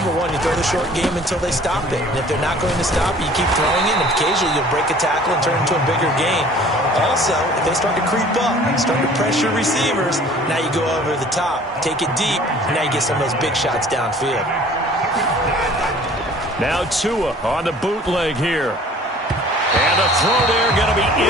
one, you throw the short game until they stop it. And if they're not going to stop it, you keep throwing it, and occasionally you'll break a tackle and turn it into a bigger gain. Also, if they start to creep up, start to pressure receivers, now you go over the top, take it deep, and now you get some of those big shots downfield. Now Tua on the bootleg here. And the throw there going to be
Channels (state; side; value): normal; both; correlation 0.50